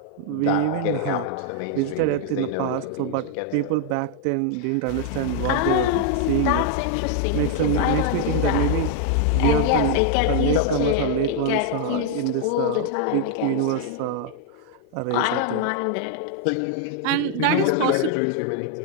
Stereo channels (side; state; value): both; different; correlation 0.00